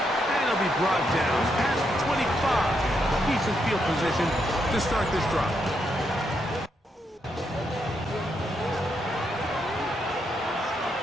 And it'll be brought down past 25. Decent field position to start this drive.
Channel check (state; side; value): normal; both; correlation 0.79